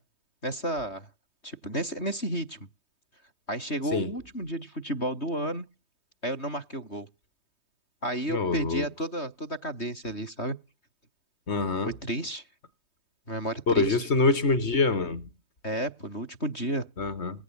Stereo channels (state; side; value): late; right; 3.2 ms